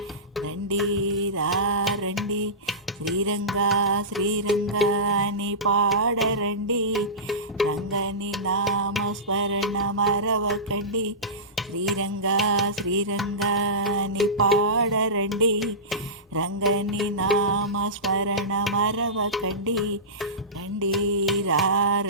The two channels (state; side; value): normal; both; correlation -0.20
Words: రండి రండి శ్రీరంగా శ్రీరంగా అని పాడరండి, రంగని నామస్మరణ మరవకండి. శ్రీరంగా శ్రీరంగా అని పాడరండి, రంగని నామస్మరణ మరవకండి. రండి